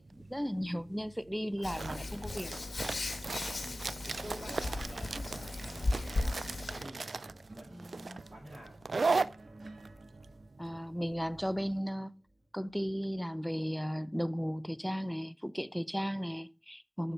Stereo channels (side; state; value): both; normal; correlation 0.96